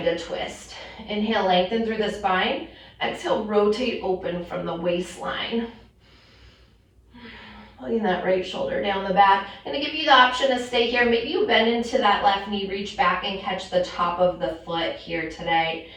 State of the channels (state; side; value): identical; both; correlation 1.00